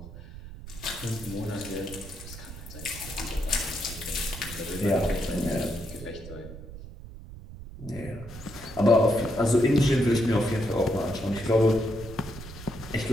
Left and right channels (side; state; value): right; noise; rumble, 14 dB below the sound